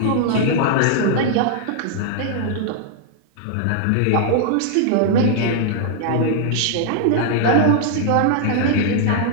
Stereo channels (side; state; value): both; different; correlation -0.01